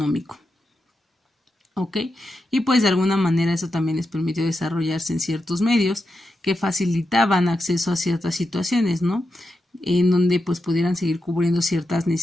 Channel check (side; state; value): both; normal; correlation 0.88